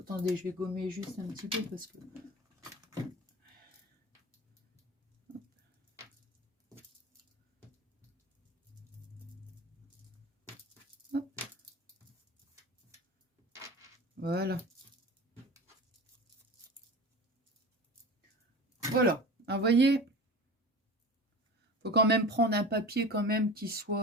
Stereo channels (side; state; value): both; normal; correlation 0.34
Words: je vais gommer juste un petit peu parce que... Hop. Voilà. Voilà. Alors, vous voyez, faut quand même prendre un papier quand même qui